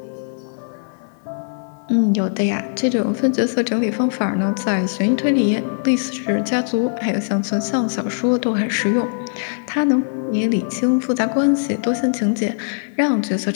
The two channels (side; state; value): right; silent; 56 dB below the other